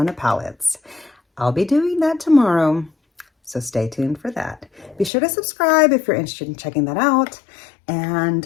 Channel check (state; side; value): drops out; right; at 5.1 s